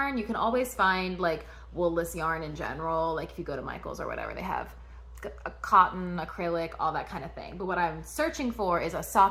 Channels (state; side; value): identical; both; correlation 1.00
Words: You can always find like woolless yarn in general, like if you go to Michael's or whatever, they have a cotton, acrylic, all that kind of thing. But what I'm searching for is a